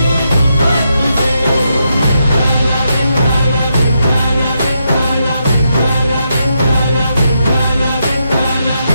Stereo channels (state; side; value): inverted; both; correlation -0.81